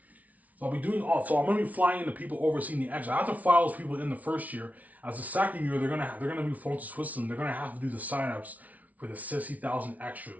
So I'll be doing all. So I'm going to be flying in the people overseeing the extras. I have to fly those people in the first year. As the second year, they're gonna be flown to Switzerland. They're gonna have to do the sign-ups for the 60,000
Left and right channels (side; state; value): left; late; 0.072 ms